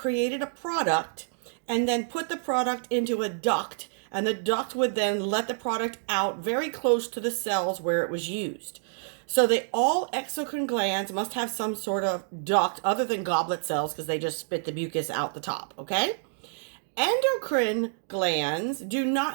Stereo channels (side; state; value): left; silent; digital silence